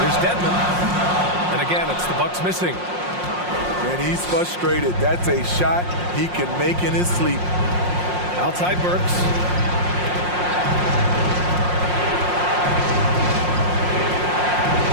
Here's Dedmon. And again, it's the Bucks missing. And he's frustrated. That's a shot he can make in his sleep. Outside Burks.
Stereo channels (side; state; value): left; late; 5.6 ms